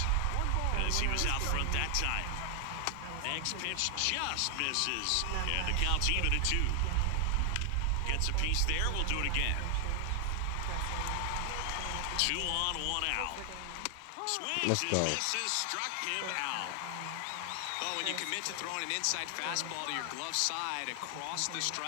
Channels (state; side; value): different; both; correlation 0.00